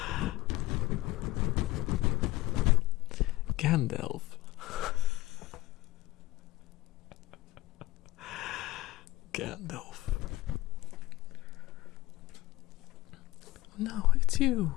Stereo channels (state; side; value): quieter; right; 17.5 dB